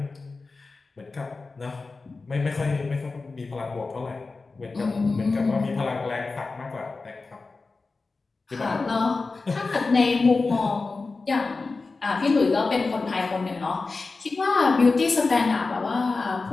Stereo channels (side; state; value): right; quieter; 3.9 dB